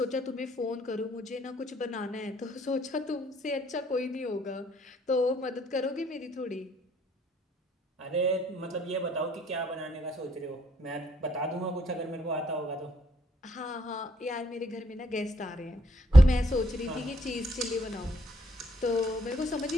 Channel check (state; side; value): normal; both; correlation 0.69